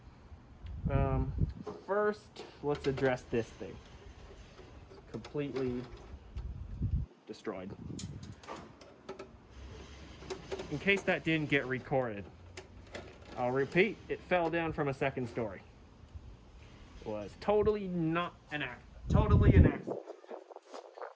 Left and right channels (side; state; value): both; identical; correlation 1.00